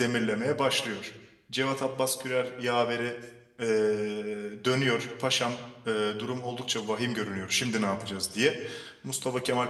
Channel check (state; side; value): identical; both; correlation 1.00